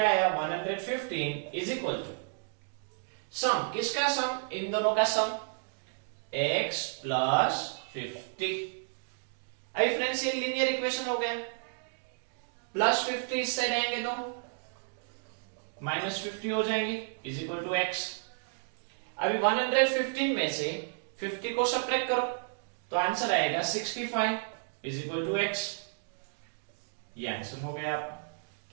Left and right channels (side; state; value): left; silent; digital silence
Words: आया 115 इज इक्वल टू सम, किसका सम, इन दोनों का सम, x प्लस 50। अभी फ्रेंड्स ये लीनियर इक्वेशन हो गया, प्लस 50 इस साइड आएंगे तो माइनस 50 हो जाएंगे इज इक्वल टू x। अभी 115 में से 50 को सब्ट्रैक्ट करो तो आंसर आएगा 65 इज इक्वल टू x। ये आंसर हो गया आपका,